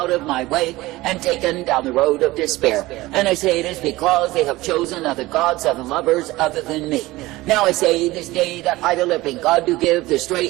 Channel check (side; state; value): left; quieter; 19.0 dB